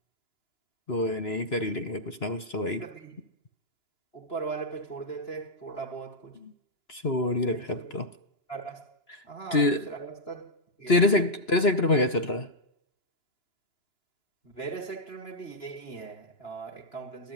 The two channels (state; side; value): late; right; 2.9 ms